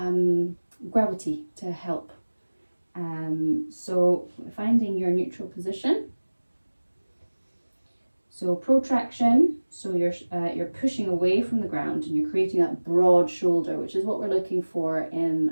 gravity to help. So finding your neutral position. So protraction, so you're pushing away from the ground and you're creating that broad shoulder, which is what we're looking for in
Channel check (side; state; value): both; inverted; correlation -1.00